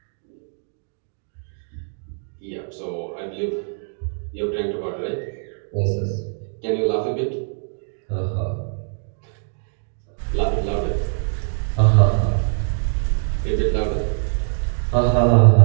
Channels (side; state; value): left; silent; digital silence